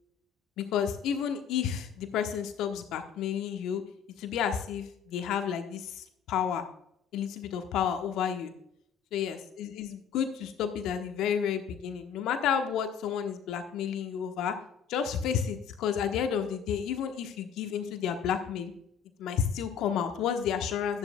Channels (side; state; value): right; quieter; 7.8 dB